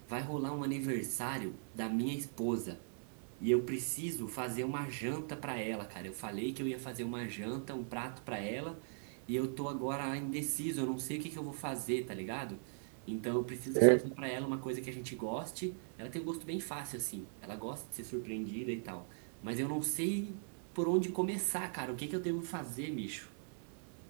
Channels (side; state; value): left; silent; 51 dB below the other